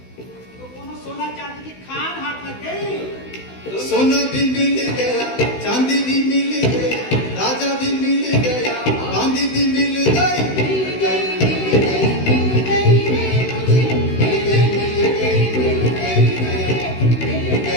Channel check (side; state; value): right; late; 16 ms